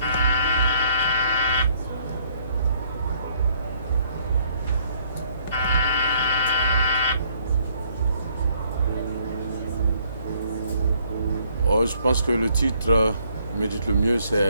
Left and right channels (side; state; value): both; inverted; correlation -0.66